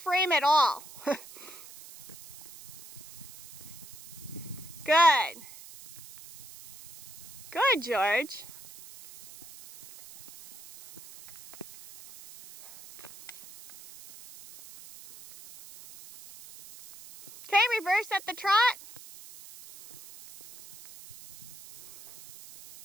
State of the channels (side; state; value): right; noise; hiss, 18 dB below the sound